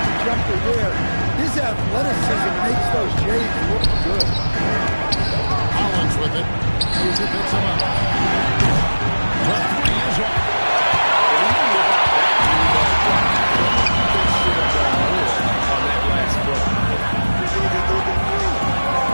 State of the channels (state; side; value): inverted; both; correlation -1.00